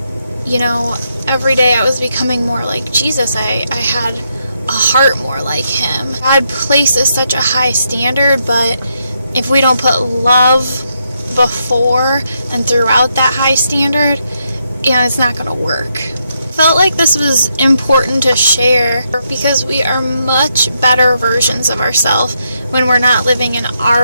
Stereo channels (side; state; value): both; inverted; correlation -0.79